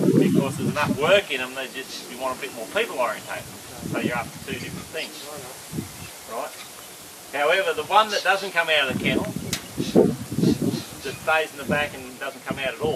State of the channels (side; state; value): both; identical; correlation 1.00